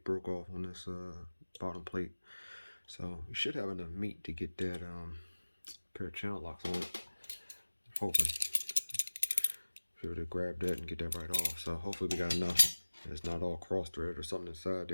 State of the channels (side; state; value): both; inverted; correlation -1.00